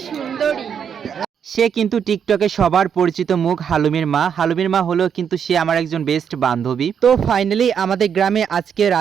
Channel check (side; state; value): left; quieter; 7.7 dB